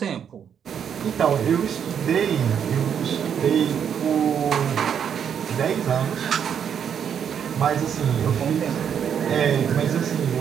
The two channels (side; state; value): left; quieter; 8.1 dB